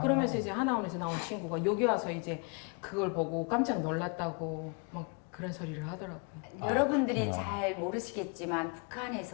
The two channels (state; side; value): quieter; right; 34.0 dB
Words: 그러면서 이제 하나원에서 나온 친구가 여기 와서 이제 그걸 보고 깜짝 놀랐다고 막 그런 소리를 하더라고요. 여러분들이 잘 모르시겠지만